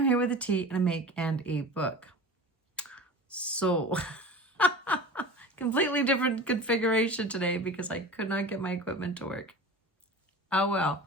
here with a tea and a make and a book. So, completely different configuration today because I could not get my equipment to work. Oh well,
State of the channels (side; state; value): both; normal; correlation 0.35